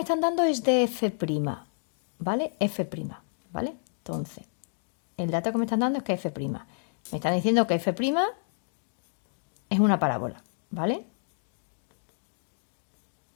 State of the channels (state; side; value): silent; right; digital silence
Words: están dando es de f', ¿vale? f', ¿vale? Entonces, el dato que me están dando es que f'. Me están diciendo que f' es una parábola, ¿vale?